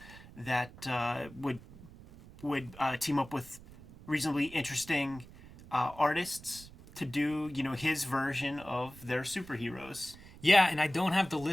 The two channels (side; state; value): right; noise; rumble, 19 dB below the sound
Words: that would team up with reasonably interesting artists to do his version of their superheroes. Yeah, and I don't have the